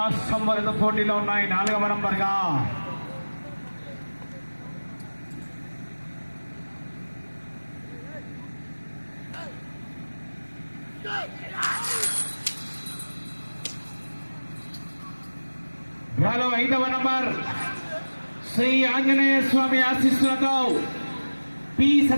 వరద పోటీలో ఉన్నాయి. 4వ నంబర్గా డ్రాలో 5వ నంబర్ శ్రీ ఆంజనేయ స్వామి ఆశీస్సులతో పి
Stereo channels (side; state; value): both; inverted; correlation -1.00